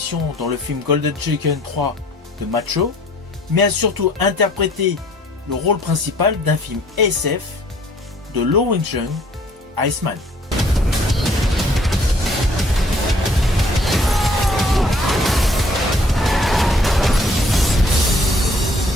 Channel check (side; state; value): both; normal; correlation 0.58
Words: dans le film Golden Chicken 3 de Macho, mais a surtout interprété le rôle principal d'un film SF de Lo Wing-jung, Iceman.